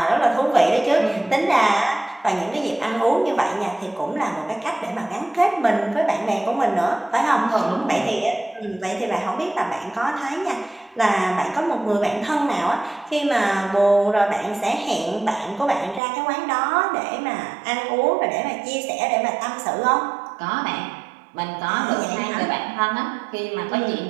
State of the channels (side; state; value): left; drops out; at 16.0 s